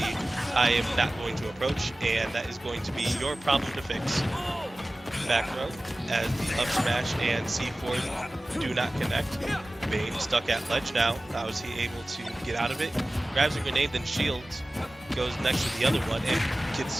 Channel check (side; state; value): both; normal; correlation 0.97